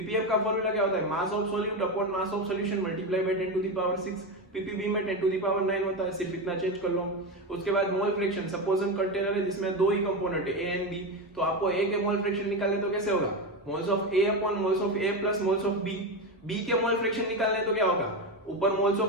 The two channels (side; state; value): both; normal; correlation 0.16